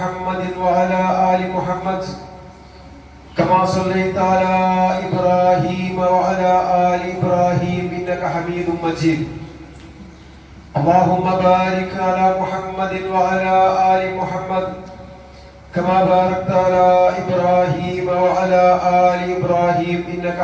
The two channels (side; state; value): both; identical; correlation 1.00